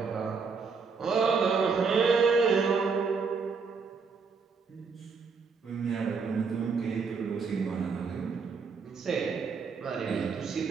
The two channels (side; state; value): left; quieter; 5.2 dB